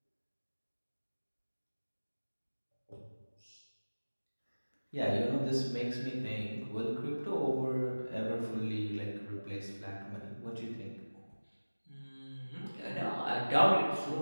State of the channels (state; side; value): inverted; both; correlation -1.00